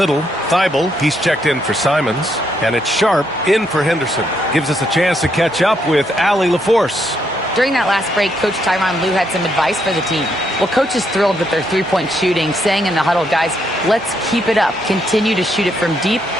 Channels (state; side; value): normal; both; correlation 0.75